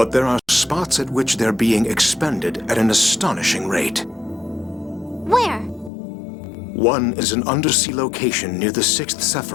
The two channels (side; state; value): right; drops out; at 5.9 s